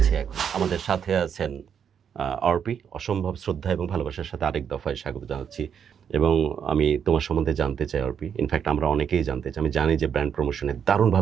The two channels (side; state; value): left; quieter; 7.9 dB